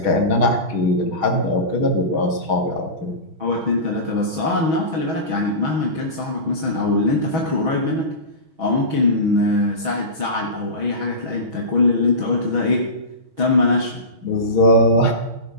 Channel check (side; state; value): left; late; 6.3 ms